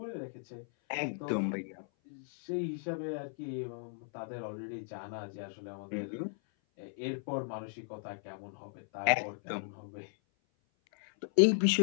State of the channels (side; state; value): right; silent; 53 dB below the other